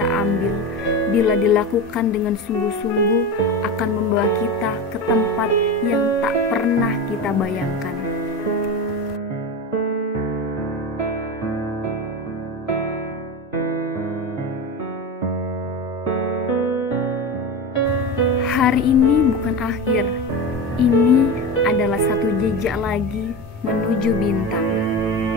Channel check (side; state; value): both; normal; correlation 0.23